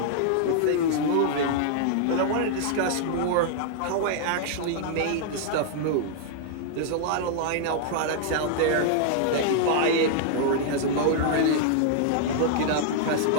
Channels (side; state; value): both; different; correlation -0.01